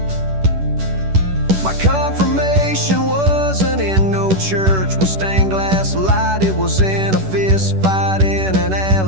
My confirmation wasn't in no church with stained glass light. It was in a fist fight in an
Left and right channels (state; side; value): late; left; 10 ms